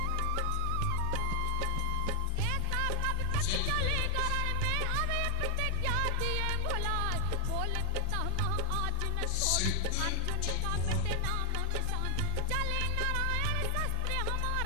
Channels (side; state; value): both; different; correlation 0.00